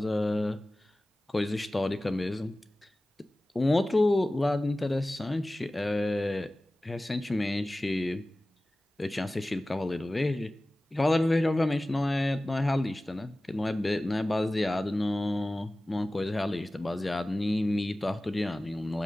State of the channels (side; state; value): both; normal; correlation 0.97